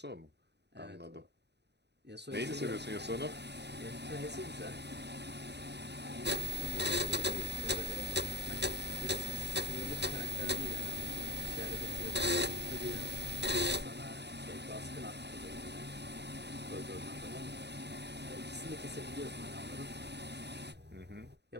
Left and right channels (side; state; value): left; late; 0.50 ms